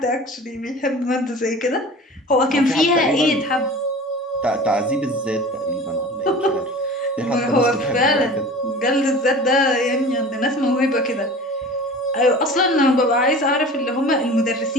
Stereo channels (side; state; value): both; normal; correlation 0.39